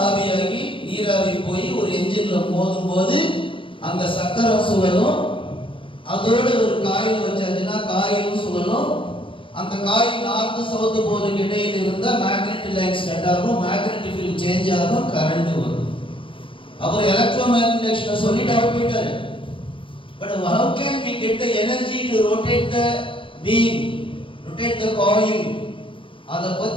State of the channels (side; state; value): right; late; 0.25 ms